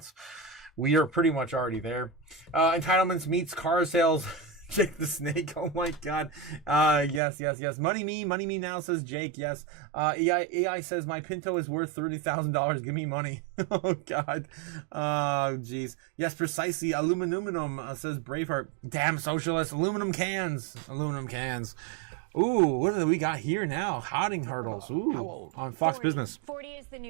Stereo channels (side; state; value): left; drops out; at 7.2 s